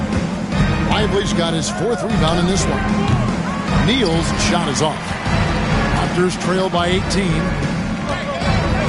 Lively's got his 4th rebound in this one. Neal's shot is off. Raptors trail by 18.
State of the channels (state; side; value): identical; both; correlation 1.00